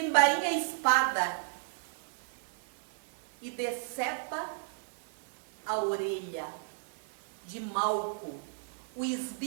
a espada e decepa a orelha de Malco, o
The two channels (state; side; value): silent; left; 55 dB below the other